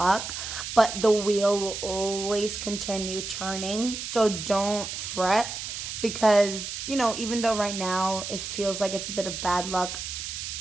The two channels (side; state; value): right; noise; hiss, 6 dB below the sound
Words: but the wheel will always continue turning. So don't fret. Because, you know, even though right now it feels like it's a bit of bad luck,